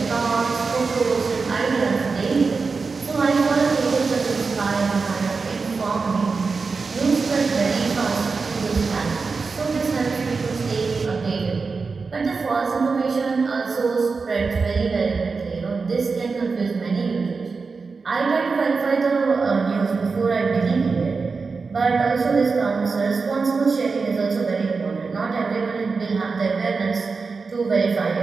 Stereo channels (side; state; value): left; quieter; 4.6 dB